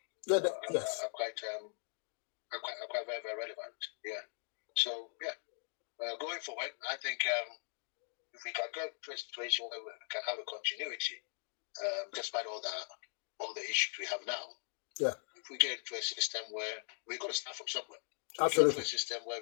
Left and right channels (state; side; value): silent; right; 51 dB below the other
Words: quite very, very relevant. Yeah. So, going forward, I think if we can get to a situation where we can have a continuity, despite all the issues we have now. Yeah. If we get into a system where we're going to start from somewhere. Absolutely. A system where